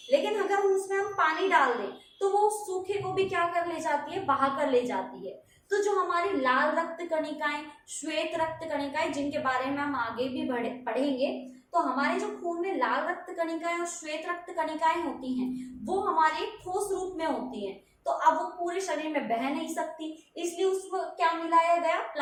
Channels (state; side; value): identical; both; correlation 1.00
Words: लेकिन अगर उसमें हम पानी डाल दें तो वो सूखे को भी क्या कर ले जाती है, बहा कर ले जाती है। तो जो हमारी लाल रक्त कणिकाएं, श्वेत रक्त कणिकाएं, जिनके बारे में हम आगे भी पढ़ेंगे, तो हमारे जो खून में लाल रक्त कणिकाएं और श्वेत रक्त कणिकाएं होती हैं, वो हमारे ठोस रूप में होती हैं। तो अब वो पूरे शरीर में बह नहीं सकती, इसलिए उसको क्या मिलाया गया,